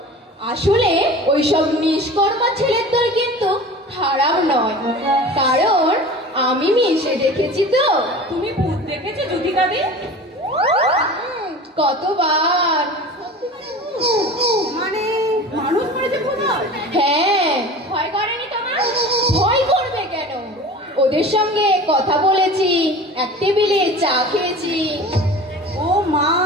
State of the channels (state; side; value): normal; both; correlation 0.37